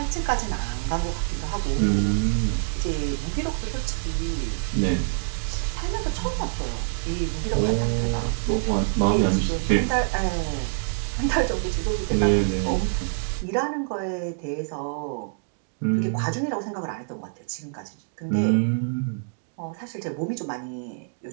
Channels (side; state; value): left; silent; digital silence